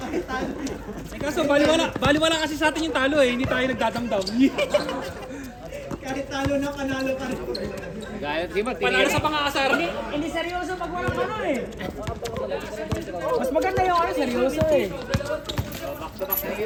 talo. Eh kaso baliwala kasi sa atin yung talo eh, hindi tayo nagdadamdam. Kahit talo na panalo ka rin. Gaya, di ba? Panalo sa pang-aasar. Hindi seryoso pag walang ano eh. Mas maganda yung ano, seryoso eh. Back to back na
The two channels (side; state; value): both; identical; correlation 1.00